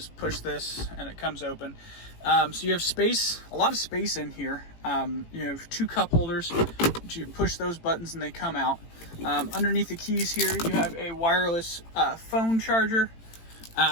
push this and it comes open. So you have space, a lot of space in here. You have 2 cup holders. you push those buttons and they come out. Underneath the keys here, you have a wireless phone charger,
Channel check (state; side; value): late; right; 18 ms